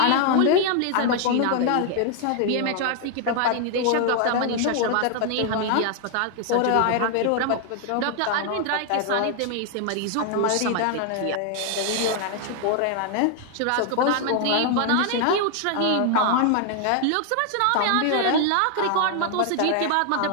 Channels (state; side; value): different; both; correlation 0.00